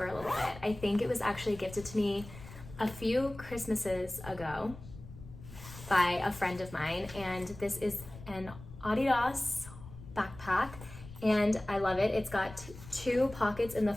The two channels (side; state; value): left; noise; rumble, 15 dB below the sound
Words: a little bit. I think it was actually gifted to me a few Christmases ago by a friend of mine, and this is an Adidas backpack, and I love it. It's got two pockets in the